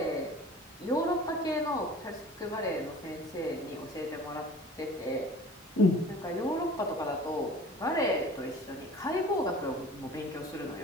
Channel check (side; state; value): both; normal; correlation 0.44